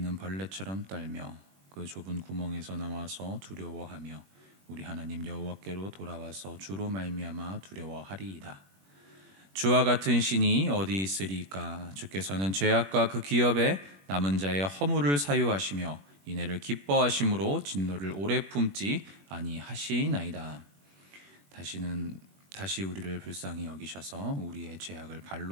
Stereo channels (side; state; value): left; late; 21 ms